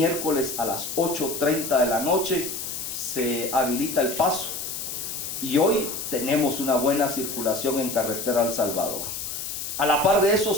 a las 8:30 de la noche se habilita el paso, y hoy tenemos una buena circulación en carretera El Salvador. A la par de eso,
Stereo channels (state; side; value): noise; left; hiss, 6 dB below the sound